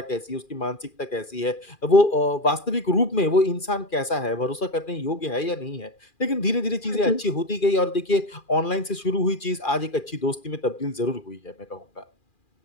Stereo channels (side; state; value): right; late; 2.4 ms